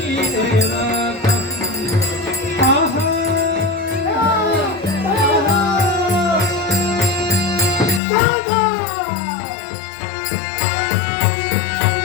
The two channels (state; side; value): drops out; right; at 8.0 s